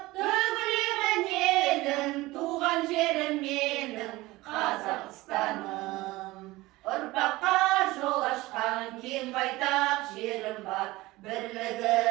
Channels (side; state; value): left; quieter; 19.7 dB